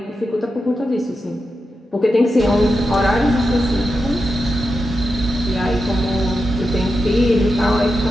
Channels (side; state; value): both; normal; correlation 0.89